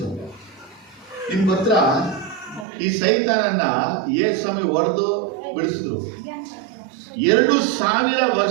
ನಿಮ್ಗೆ ಗೊತ್ತಾ, ಈ ಸೈತಾನನ್ನ ಯೇಸು ಸ್ವಾಮಿ ಹೊಡೆದು ಬಿಡಿಸಿದ್ರು. 2000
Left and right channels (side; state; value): left; drops out; at 2.7 s